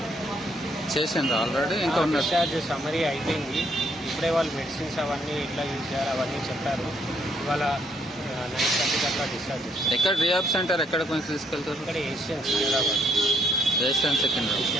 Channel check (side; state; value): both; normal; correlation 0.70